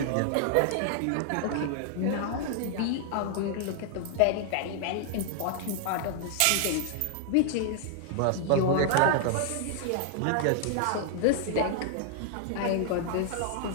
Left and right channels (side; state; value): both; different; correlation 0.00